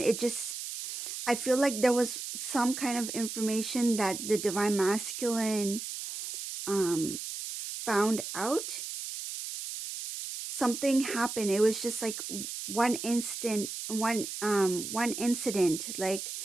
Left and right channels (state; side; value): noise; right; hiss, 7 dB below the sound